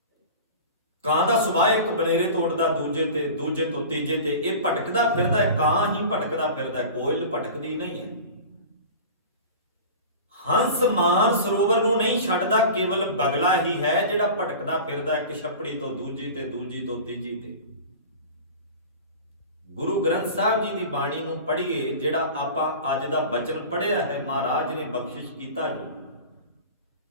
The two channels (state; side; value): inverted; both; correlation -0.36